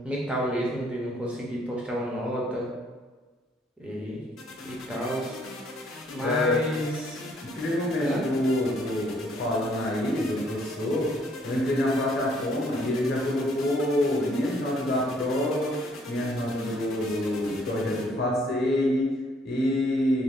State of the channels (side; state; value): both; normal; correlation 0.65